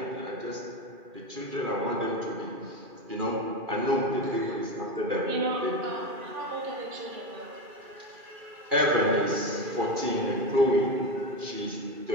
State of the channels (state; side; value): late; left; 2.4 ms